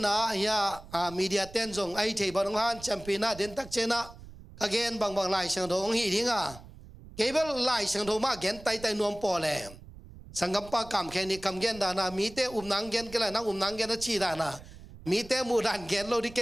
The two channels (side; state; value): right; noise; rumble, 18 dB below the sound